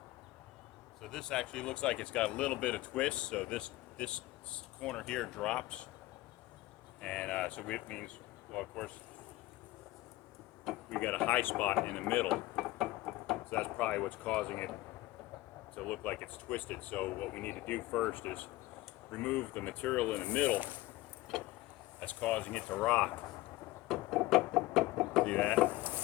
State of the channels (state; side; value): quieter; right; 18.2 dB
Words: So this actually looks like it's got a little bit of twist, so this corner here drops, and so it means, well, of course, we got a high spot in the middle, so that's probably what's causing it to look like it's twisted. So what we need to do first is remove the material in the middle that's causing it to rock. See that?